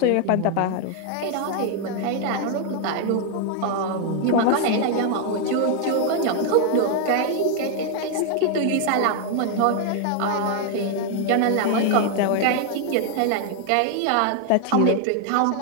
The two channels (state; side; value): different; both; correlation 0.00